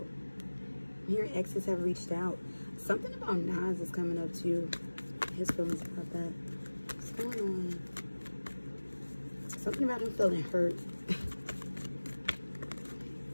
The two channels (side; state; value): both; inverted; correlation -1.00